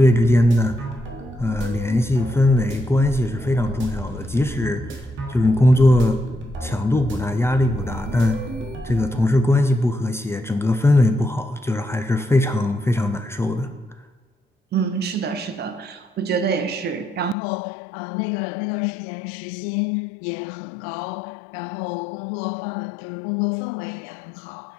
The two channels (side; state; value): right; drops out; at 17.4 s